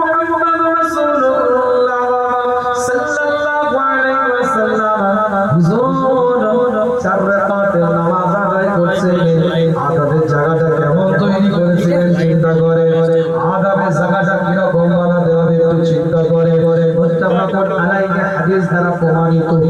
মুহাম্মদ রাসূলুল্লাহ সাল্লাল্লাহু আলাইহি ওয়াসাল্লাম হুজুর 4 রাকাতের নামাজ আদায় করছিলেন। আদাবের জায়গাটা কেমন তৈরি করেছিলেন চিন্তা করে, আদাবের জায়গাটা কি রকম বানাতে হবে একটু চিন্তা করে। মুত্তাফাকুন আলাইহি হাদিস দ্বারা প্রমাণিত,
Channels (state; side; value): identical; both; correlation 1.00